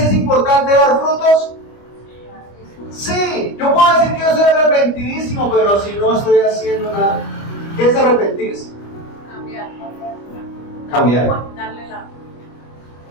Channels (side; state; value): right; late; 25 ms